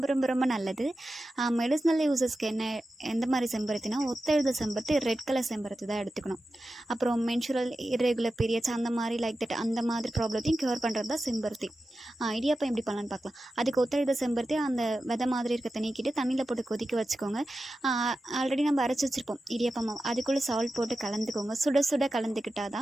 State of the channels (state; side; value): normal; both; correlation 0.92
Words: ரொம்ப ரொம்ப நல்லது. மெடிசினல் யூசஸ்க்கு எந்த மாதிரி செம்பருத்தினா, ஒத்தெழுத செம்பருத்தி, ரெட் கலர் செம்பருத்தி தான் எடுத்துக்கணும். அப்புறம் மென்சுரல் இர்ரெகுலர் பீரியட்ஸ் அந்த மாதிரி அந்த மாதிரி ப்ராப்ளத்தையும் க்யூர் பண்ணுறது தான் செம்பருத்தி. இடியாப்பம் எப்படி பண்ணலான்னு பார்க்கலாம். அதுக்கு ஒத்தெழுத செம்பருத்தி அந்த விதை மாதிரி இருக்க நீக்கிட்டு தண்ணியில் போட்டு கொதிக்க வச்சுக்கோங்க. ஆல்ரெடி நம்ம அரைச்சி வச்சுருப்போம் இடியாப்பம் மாவு, அதுக்குள்ளே சால்ட் போட்டு கலந்துக்கோங்க. சுட சுட கலந்துக்கிட்டால்